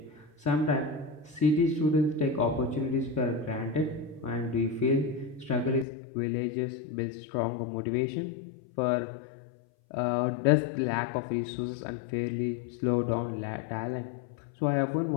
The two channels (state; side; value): drops out; right; at 5.9 s